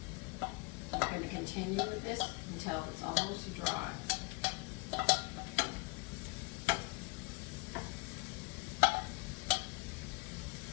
You're going to continue with this until it's almost dry.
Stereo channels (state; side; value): quieter; right; 26.2 dB